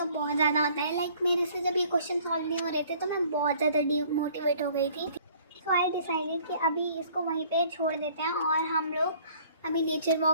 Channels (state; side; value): inverted; both; correlation -0.56